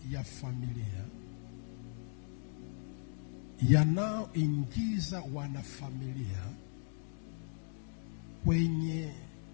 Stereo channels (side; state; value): right; silent; digital silence